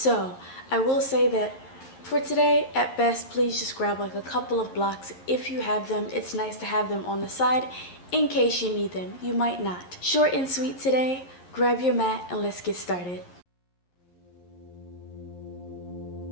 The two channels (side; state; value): right; late; 11 ms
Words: I will say that for today, at best, please just grab like a couple of blocks if you have them. It's nice to have them on the side in case you need them. You might not. Short and sweet today. Grab your mat and let's get started.